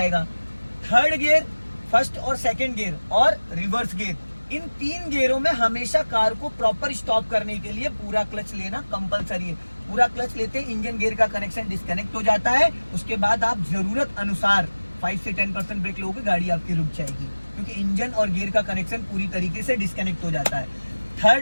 3rd गियर, 1st और 2nd गियर और रिवर्स गियर, इन 3 गियरों में हमेशा कार को प्रॉपर स्टॉप करने के लिए पूरा क्लच लेना कंपलसरी है। पूरा क्लच लेते इंजन गियर का कनेक्शन डिस्कनेक्ट हो जाता है, उसके बाद आप जरूरत अनुसार 5 से 10% ब्रेक लोगे, गाड़ी आपकी रुक जाएगी, क्योंकि इंजन और गियर का कनेक्शन पूरी तरीके से डिस्कनेक्ट हो जाता है।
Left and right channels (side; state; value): both; inverted; correlation -1.00